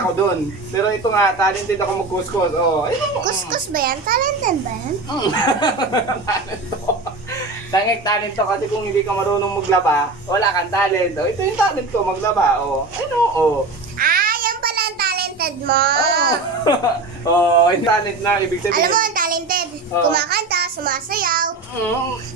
doon. Pero ito nga, talented ako magkuskus. Oh, ayun. Kuskus ba yan? Talented ba yan? Talento. Tangik talento kasi kung hindi ka marunong maglaba, wala kang talento. Ito yung talent ko, maglaba. Oh, ayun oh. Ah, yan pala ang talented mo. Yung talent na, ibig sabihin. Alam mo ang talented. Oo. Kumakanta, sumasayaw, Mm,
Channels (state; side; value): quieter; left; 3.4 dB